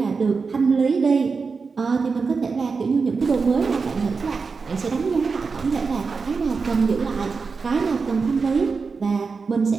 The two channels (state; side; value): quieter; left; 4.8 dB